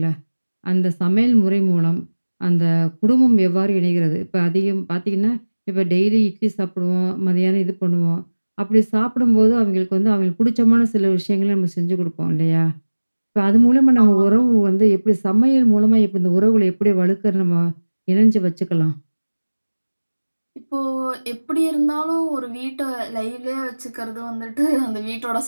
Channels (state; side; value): inverted; both; correlation -1.00